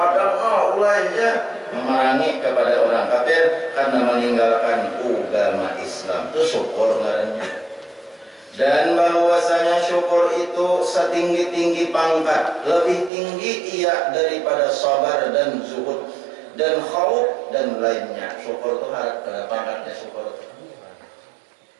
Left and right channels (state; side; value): drops out; left; at 13.1 s